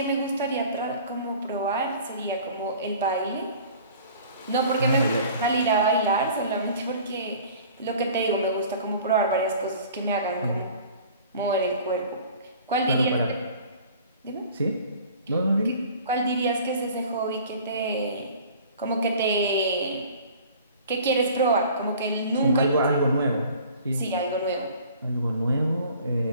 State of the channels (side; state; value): both; inverted; correlation -0.47